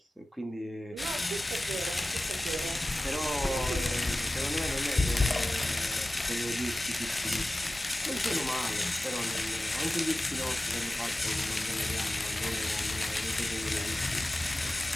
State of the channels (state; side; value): normal; both; correlation 0.96